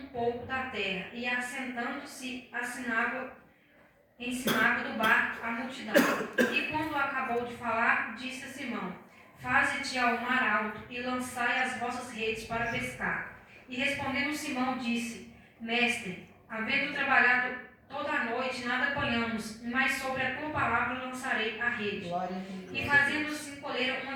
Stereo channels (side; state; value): both; identical; correlation 1.00